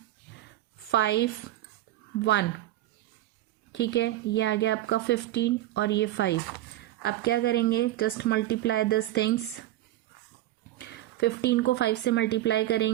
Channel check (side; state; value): left; quieter; 14.7 dB